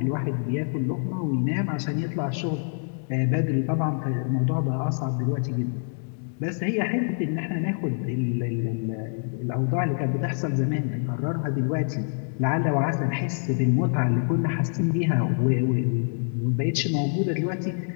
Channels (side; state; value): right; silent; digital silence